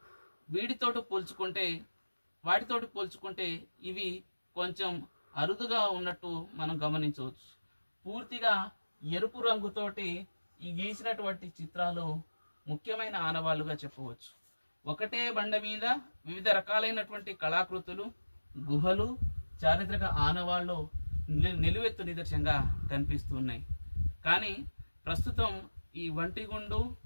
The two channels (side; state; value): both; inverted; correlation -1.00